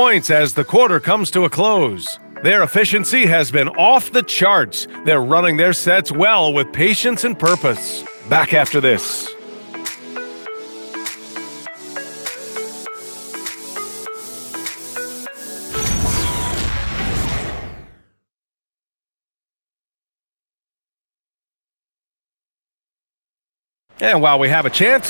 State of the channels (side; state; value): both; inverted; correlation -1.00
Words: as the quarter comes to a close. Their efficiency has been off the charts. They're running their sets well with patience and purpose. Back after this. And while we have a